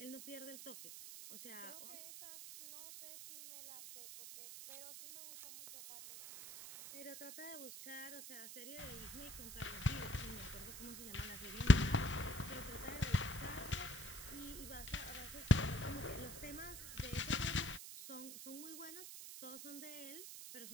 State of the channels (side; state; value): right; noise; hiss, 10 dB below the sound